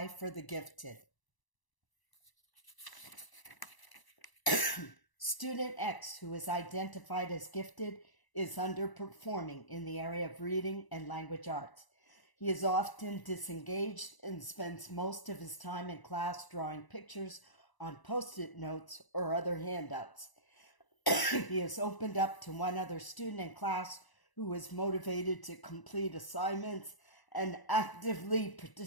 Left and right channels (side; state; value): right; late; 1.0 ms